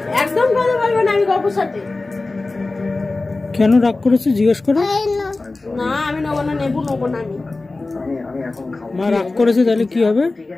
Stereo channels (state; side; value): quieter; right; 3.3 dB